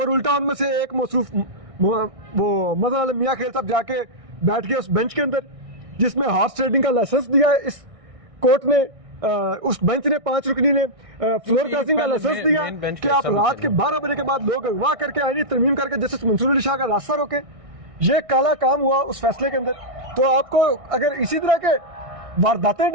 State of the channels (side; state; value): left; late; 1.6 ms